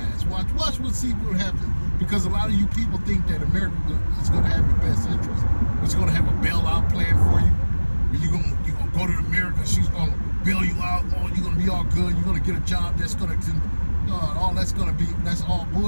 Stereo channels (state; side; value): inverted; both; correlation -1.00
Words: Watch see what happens. Because a lot of you people think that America is going to have your best interest. It's going to have a bailout plan for you. You're gonna go to America. She's going to bail you out. Oh, you're going to be all good. You're going to get a job that's going to, that's all